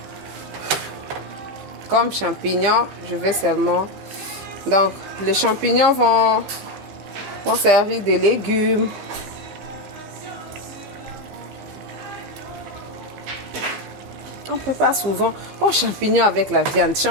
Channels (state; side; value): late; left; 15 ms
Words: Comme champignons, je vais seulement... Donc, les champignons vont servir de légumes. On prépare souvent champignons avec la viande.